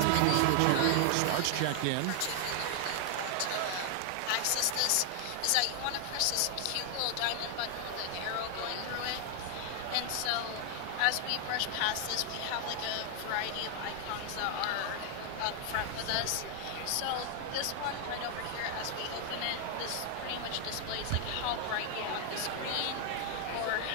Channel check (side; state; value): both; different; correlation 0.00